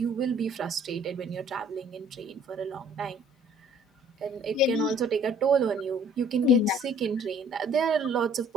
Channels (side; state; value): both; normal; correlation 0.56